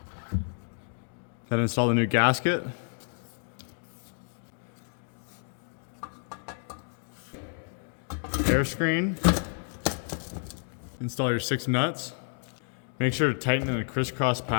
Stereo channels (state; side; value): silent; right; 58 dB below the other